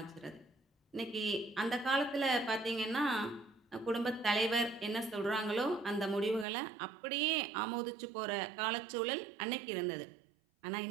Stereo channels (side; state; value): left; drops out; at 6.5 s